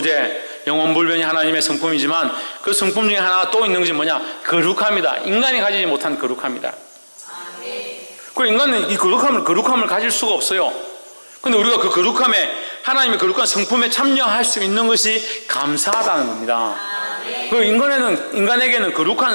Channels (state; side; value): inverted; both; correlation -1.00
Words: 영원불변이 하나님의 성품이지만 그 성품 중에 하나가 또 있는 것이 뭐냐? 거룩합니다. 인간이 가지지 못한 거룩합니다. 그 인간은 이 거룩함을 가질 수가 없어요. 근데 우리가 그 거룩함에, 하나님의 거룩한 성품에 참여할 수 있는 것이 감사하다는 겁니다. 그 인간에게는